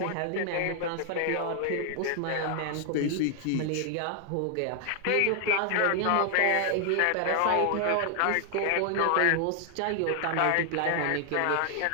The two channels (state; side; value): different; both; correlation 0.00